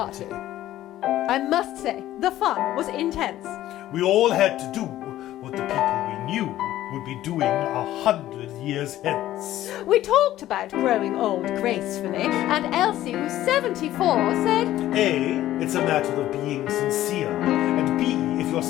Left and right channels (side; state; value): right; quieter; 13.9 dB